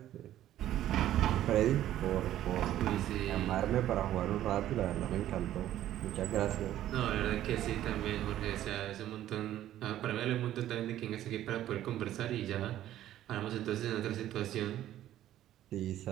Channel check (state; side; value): quieter; left; 12.7 dB